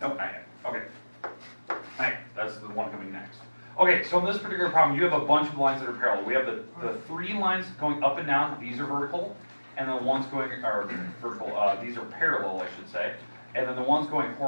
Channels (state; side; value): inverted; both; correlation -1.00